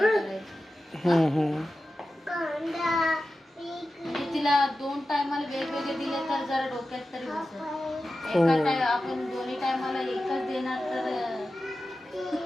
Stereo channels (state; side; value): normal; both; correlation 0.93